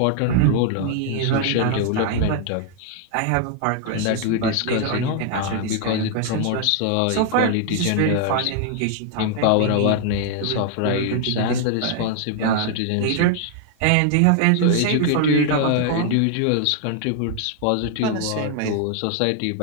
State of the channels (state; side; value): different; both; correlation 0.00